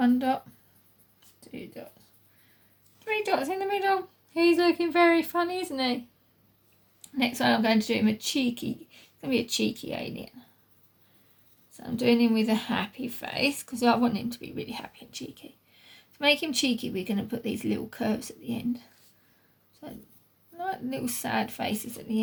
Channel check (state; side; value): identical; both; correlation 1.00